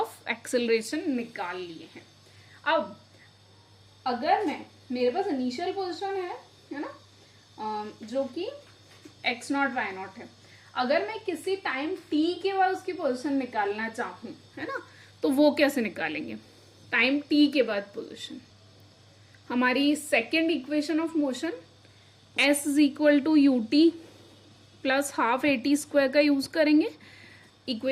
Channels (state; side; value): identical; both; correlation 1.00